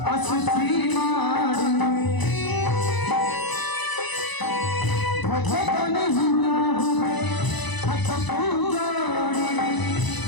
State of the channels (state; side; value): late; right; 1.0 ms